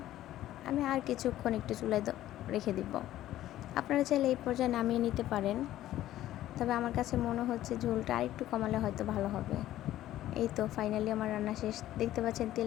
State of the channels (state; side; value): quieter; right; 13.7 dB